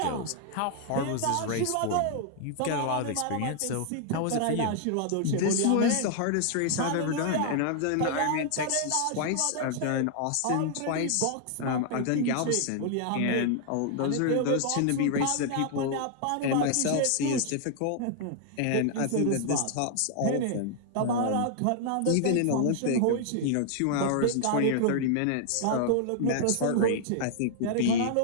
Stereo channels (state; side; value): different; both; correlation 0.00